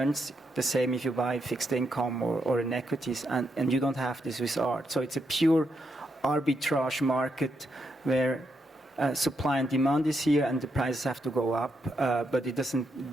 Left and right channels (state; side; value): normal; both; correlation 0.80